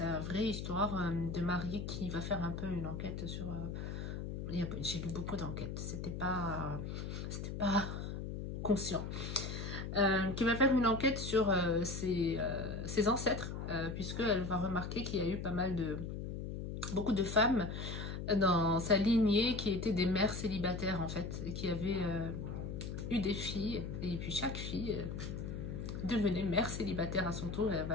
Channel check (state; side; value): noise; left; hum, 5 dB below the sound